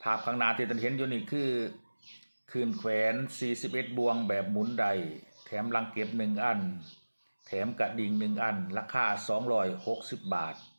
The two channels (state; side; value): inverted; both; correlation -1.00